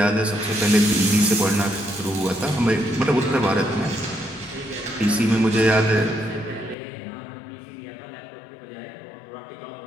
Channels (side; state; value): right; drops out; at 6.8 s